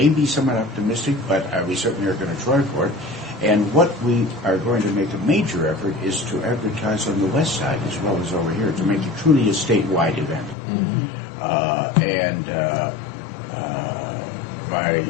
be somewhat optimistic, but we certainly are going to try for it. And what we are going to make a major effort is to advertise on the west side as well as over here, to make it truly a statewide event.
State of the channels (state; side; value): drops out; right; at 10.6 s